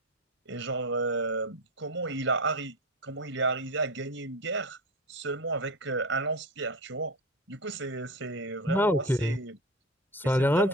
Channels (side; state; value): both; normal; correlation 0.23